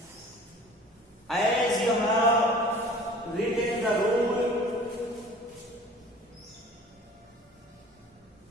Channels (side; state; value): both; normal; correlation 0.46